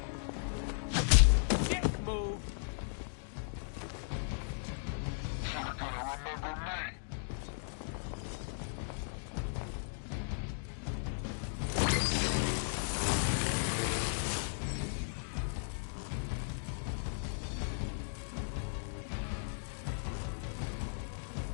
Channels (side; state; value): right; silent; digital silence